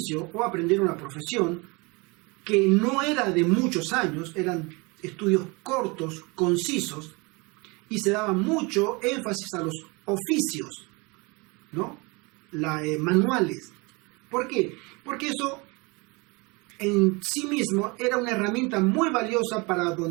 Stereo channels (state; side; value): quieter; left; 27.5 dB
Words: o aprender una profesión que no era de muchos años, eran estudios cortos, concisos, y se daba mucho énfasis a los oficios, ¿no? Manuales. ¿Por qué? Porque eso en sí mismo era una herramienta muy valiosa para